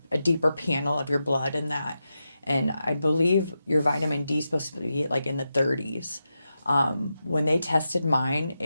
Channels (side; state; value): both; inverted; correlation -0.89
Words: a deeper panel of your blood and that. And I believe your vitamin D is supposed to be like in the 30s. When they tested mine,